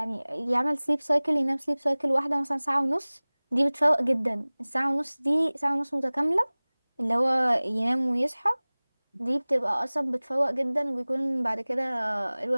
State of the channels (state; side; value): inverted; both; correlation -1.00